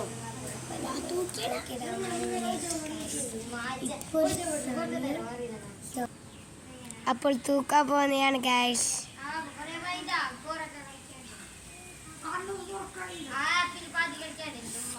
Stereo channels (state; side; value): identical; both; correlation 1.00